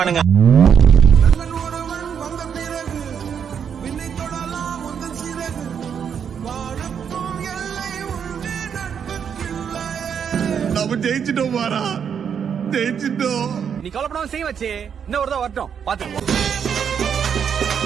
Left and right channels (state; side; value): quieter; left; 7.6 dB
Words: நம்ம ஜெயிச்சிட்டோம் பாரா, ஜெயிச்சிட்டோம். நீ கவலைப்படாம செய்ய வச்சு இன்னும் ஒரு தான் வரட்டும் பாத்து.